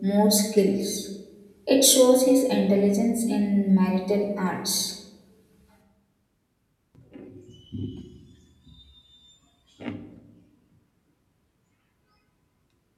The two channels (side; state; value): both; identical; correlation 1.00